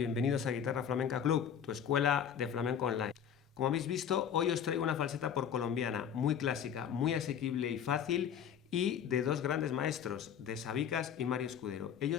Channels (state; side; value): quieter; right; 8.4 dB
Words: a Guitarra Flamenca Club, tu escuela de flamenco online. Como habéis visto, hoy os traigo una falseta por colombiana, muy clásica, muy asequible y fácil, y de dos grandes maestros, de Sabicas y Mario Escudero.